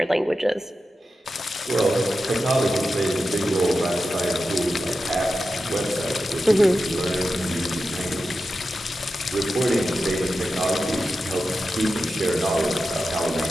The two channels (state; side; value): normal; both; correlation 0.91